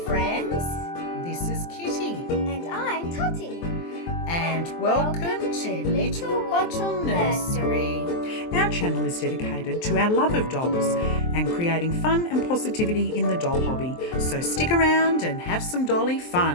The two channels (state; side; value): late; right; 23 ms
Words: This is Kitty. And I'm Totty. And welcome to Little Bottle Nursery. Our channel is dedicated to our love of dolls and creating fun and positivity in the doll hobby. So stick around and have some dolly